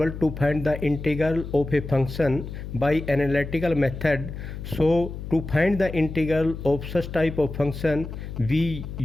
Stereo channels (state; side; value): noise; left; hum, 9 dB below the sound